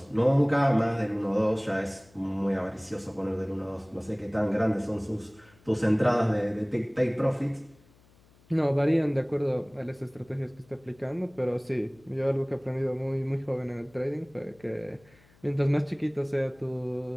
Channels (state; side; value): noise; left; hum, 30 dB below the sound